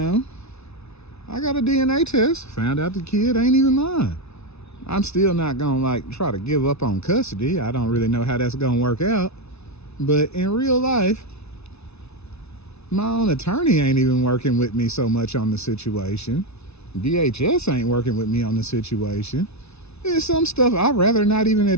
I got a DNA test, found out the kid ain't even mine. I'm still not gonna try to give up on custody. I don't really know how that's gonna work out. But in real life, my own attorney ain't even working with me so much on the situation. DHS ain't working with me on the situation. There's some stuff I'd rather not even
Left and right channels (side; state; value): right; late; 0.80 ms